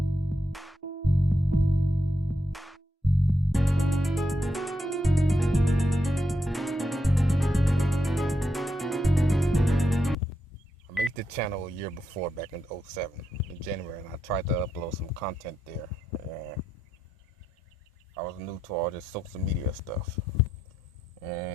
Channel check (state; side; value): normal; both; correlation 0.83